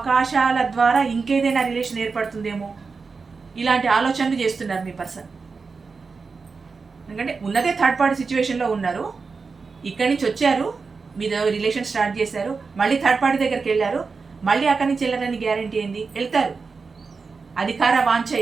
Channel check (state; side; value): quieter; left; 4.7 dB